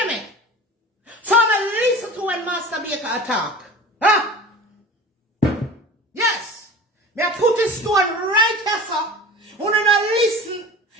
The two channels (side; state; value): both; normal; correlation 0.37